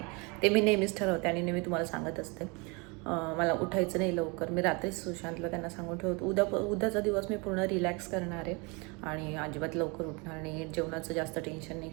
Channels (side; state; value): left; quieter; 29.5 dB